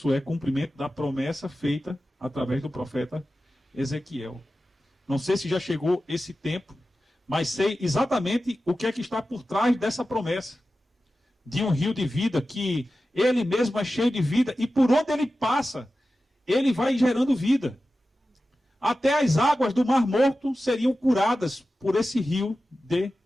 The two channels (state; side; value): normal; both; correlation 0.94